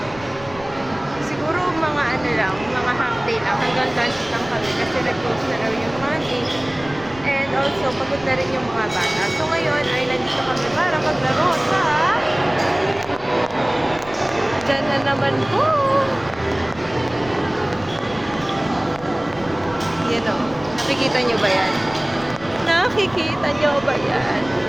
Siguro mga ano lang, mga half day lang, hanggang lunch lang kami kasi nag-close na raw yung money. And also, pagod na rin yung mga bata. So ngayon ay nandito kami para maglaro sa dyan na naman po! Yan o, nakikita nyo ba yan? Nakikita nyo ba yan?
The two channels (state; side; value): noise; left; rumble, 19 dB below the sound